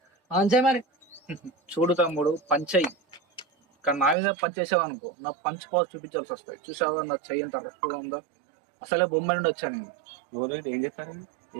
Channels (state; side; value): drops out; left; at 4.2 s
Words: మరి చూడు తమ్ముడు, పంచయి. కానీ నా మీద పంచేసావు అనుకో, నా పంచ్ పాస్ చూపించాల్సి వస్తాయి. చూసావా నా చెయ్యి ఎంత రఫ్గా ఉందో? అసలే బొమ్మ నుండి వచ్చా నేను. ఏం చేస్తారు?